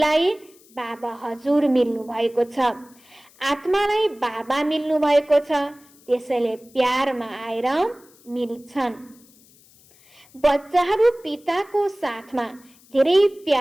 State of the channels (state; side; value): noise; left; hiss, 28 dB below the sound